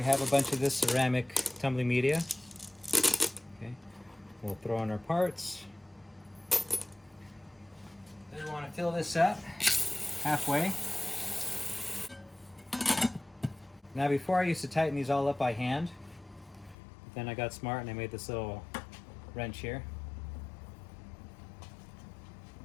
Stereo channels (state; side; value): drops out; right; at 16.8 s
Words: have a bunch of this ceramic tumbling media. Okay, we'll throw in our parts. Then we want to fill this up halfway. Now before I used to tighten these all up by hand, but then I got smart and I made this little wrench here.